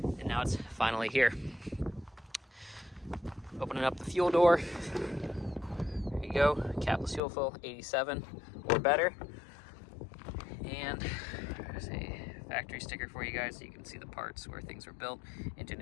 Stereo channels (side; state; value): right; drops out; at 7.2 s